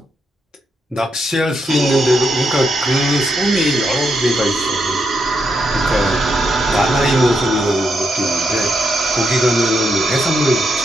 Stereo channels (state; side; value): normal; both; correlation 0.81